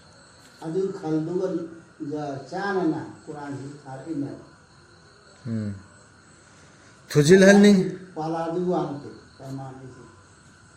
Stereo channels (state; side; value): identical; both; correlation 1.00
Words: ꯑꯗꯨ ꯈꯜꯗꯨꯒ ꯆꯥꯅꯅ ꯀꯨꯔꯥꯟꯁꯤ ꯊꯥꯔꯛꯏꯅꯦꯕ ꯊꯨꯖꯤꯜꯍꯟꯅꯤꯡ ꯄꯥꯂꯥꯗꯨ ꯋꯥꯡꯇꯦ ꯄꯔꯃꯥꯟꯅꯤꯁꯤ